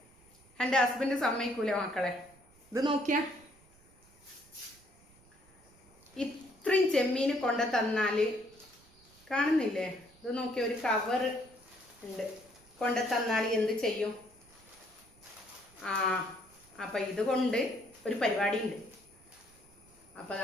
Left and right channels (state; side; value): noise; right; rumble, 27 dB below the sound